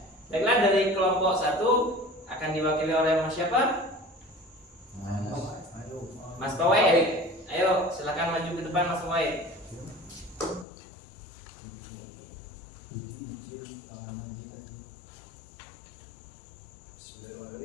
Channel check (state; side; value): drops out; right; at 10.7 s